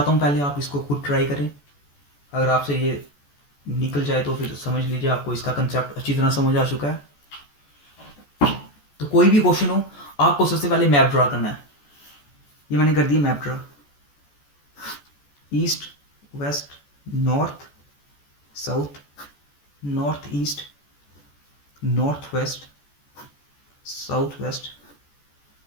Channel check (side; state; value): right; late; 14 ms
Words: हूँ पहले आप इसको खुद ट्राई करें, अगर आपसे ये निकल जाए तो फिर समझ लीजिए आपको इसका कंसेप्ट अच्छी तरह समझ आ चुका है। तो कोई भी क्वेश्चन हो, आपको सबसे पहले मैप ड्रा करना है। ये मैंने कर दिया map draw, east west north south, north east north west south west